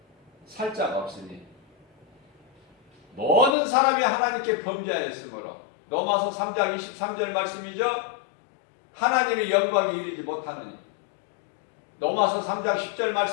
살 자가 없으니 모든 사람이 하나님께 범죄하였으므로, 로마서 3장 23절 말씀이죠. 하나님의 영광이 이르지 못하느니. 로마서 3장 10절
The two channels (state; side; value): drops out; right; at 3.6 s